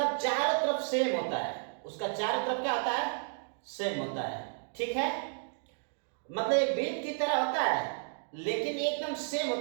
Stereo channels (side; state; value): left; silent; 56 dB below the other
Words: चारों तरफ सेम होता है, उसका चारों तरफ क्या होता है? सेम होता है। ठीक है, मतलब एक बीट की तरह होता है, लेकिन एकदम सेम